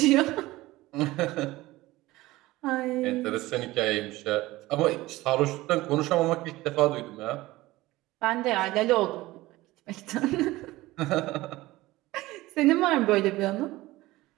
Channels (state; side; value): quieter; left; 18.5 dB